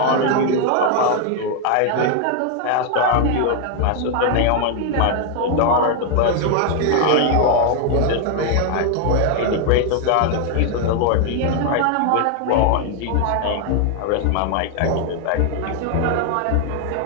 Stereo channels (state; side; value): different; both; correlation 0.00